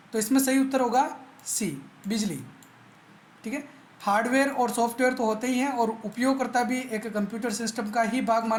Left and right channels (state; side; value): identical; both; correlation 1.00